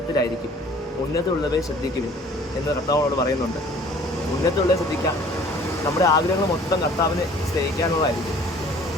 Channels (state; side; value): normal; both; correlation 0.52